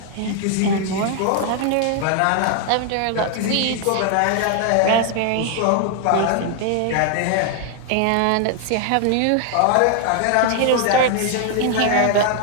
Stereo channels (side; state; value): both; different; correlation 0.00